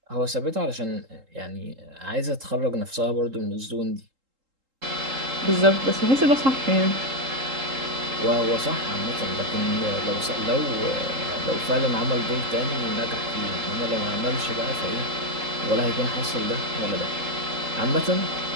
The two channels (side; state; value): left; late; 3.8 ms